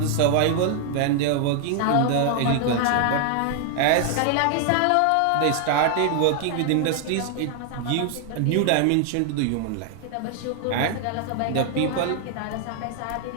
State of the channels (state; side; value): different; both; correlation 0.00